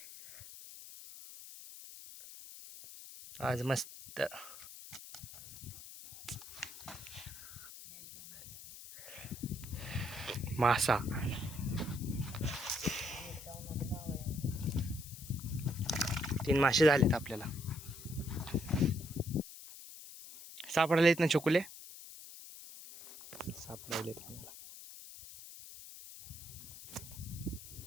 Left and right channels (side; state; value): left; noise; hiss, 14 dB below the sound